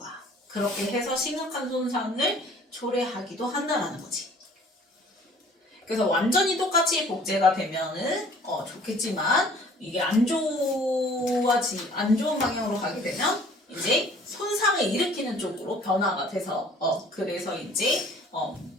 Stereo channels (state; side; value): normal; both; correlation 0.52